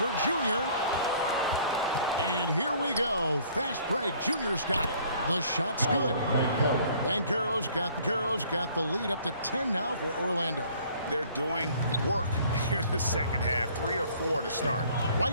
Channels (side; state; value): both; inverted; correlation -0.56